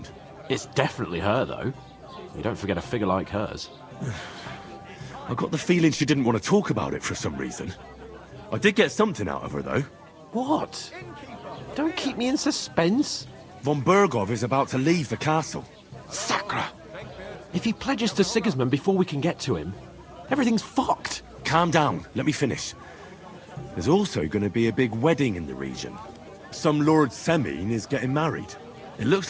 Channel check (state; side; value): identical; both; correlation 1.00